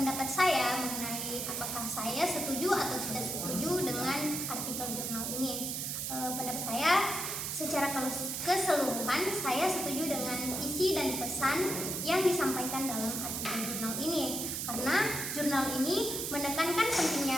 saya mengenai apakah saya setuju atau tidak setuju dengan artikel jurnal ini. Pendapat saya secara keseluruhan saya setuju dengan isi dan pesan yang disampaikan dalam artikel jurnal ini, karena jurnal ini menekankan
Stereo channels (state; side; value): noise; right; hiss, 3 dB below the sound